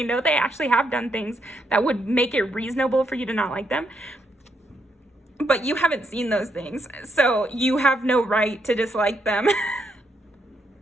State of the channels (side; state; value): both; normal; correlation 0.77